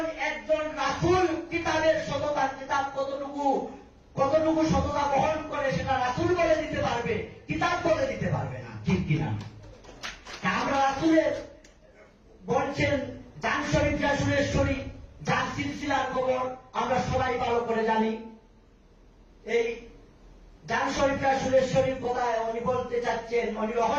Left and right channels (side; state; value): both; identical; correlation 1.00